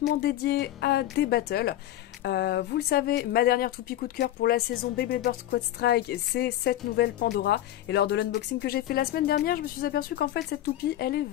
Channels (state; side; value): quieter; right; 13.3 dB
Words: dédiée à des battles. Vous le savez, ma dernière toupie coup de cœur pour la saison Beyblade Burst Quad Strike, c'est cette nouvelle Pandora. Et lors de l'unboxing que j'ai fait la semaine dernière, je me suis aperçue qu'en fait cette toupie, elle est